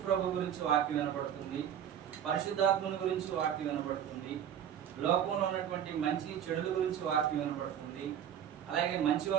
ప్రభు గురించి వాక్యం వినపడుతుంది, పరిశుద్ధాత్మని గురించి వాక్యం వినపడుతుంది, లోకంలో ఉన్నటువంటి మంచి చెడుల గురించి వాక్యం వినపడుతుంది, అలాగే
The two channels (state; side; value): quieter; left; 9.5 dB